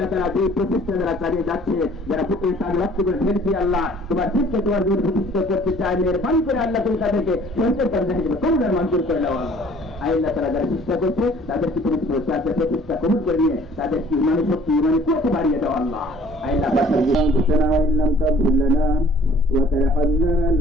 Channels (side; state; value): both; normal; correlation 0.54